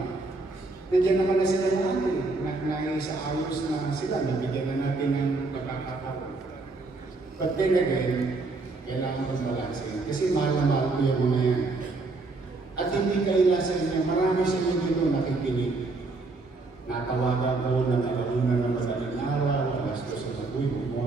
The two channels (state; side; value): quieter; left; 3.5 dB